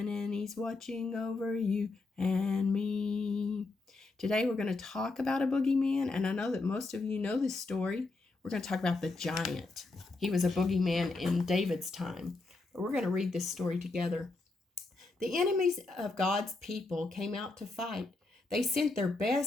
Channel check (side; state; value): right; quieter; 3.4 dB